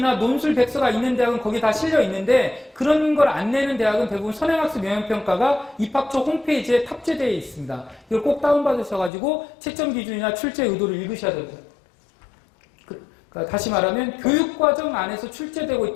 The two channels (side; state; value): right; drops out; at 9.1 s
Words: 논술 백서가 있는 대학은 거기에 다 실려 있는데 그런 걸 안 내는 대학은 대부분 선행학습 영역평가가 입학처 홈페이지에 탑재되어 있습니다. 이걸 꼭 다운받으셔가지고 채점 기준이나 출제 의도를 읽으셔야 됩니다. 그러니까 다시 말하면 교육과정 안에서 출제되고